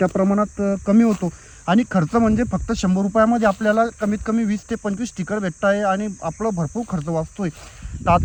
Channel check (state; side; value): identical; both; correlation 1.00